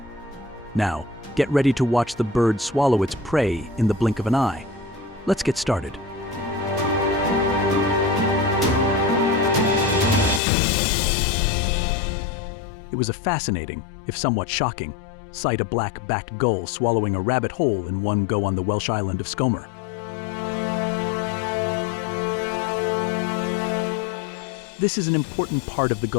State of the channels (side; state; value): right; drops out; at 10.4 s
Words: Now, get ready to watch the bird swallow its prey in the blink of an eye. Let's get started. It was a fascinating, if somewhat shocking, sight: a black-backed gull swallowing a rabbit whole in one go on the Welsh island of Scomer. This is an important part of the